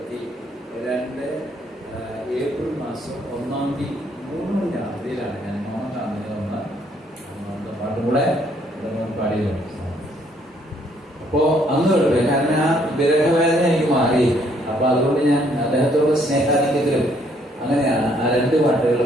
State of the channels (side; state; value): both; normal; correlation 0.67